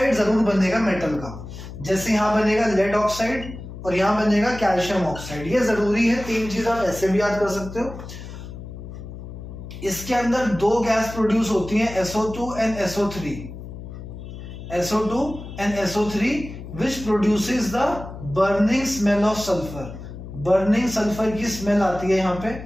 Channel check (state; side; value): noise; left; hum, 12 dB below the sound